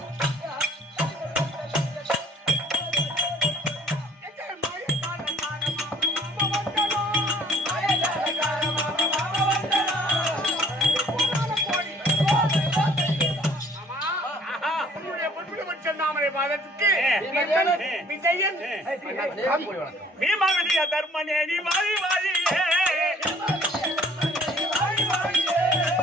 பீமா விஜய தர்மனே நீ வாழி வாழியே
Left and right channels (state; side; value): normal; both; correlation 0.55